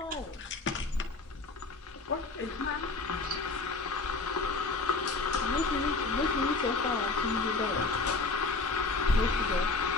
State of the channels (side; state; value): right; quieter; 3.7 dB